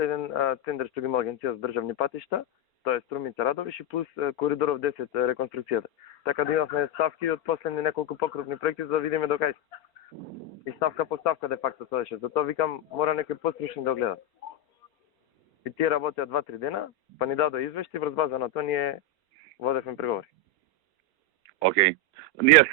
еден тендер што ги има Агенција за државни патишта, тоа е Струмица Радовиш и плюс коридоров 10 реконструкцијата. Така да имавме ставки од последни неколку покрупни проекти за да видиме до кај. И ставка по ставка де факто се деше. Затоа викам мора некој пострушни да гледа. И тие работеа 2-3 дена, па ни дадоа извешти, врз база на тоа ние водевме преговори. Океј. Ние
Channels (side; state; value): right; late; 4.4 ms